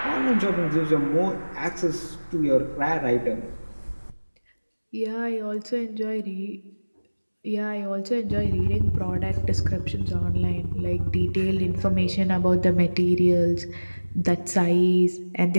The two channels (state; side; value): inverted; both; correlation -1.00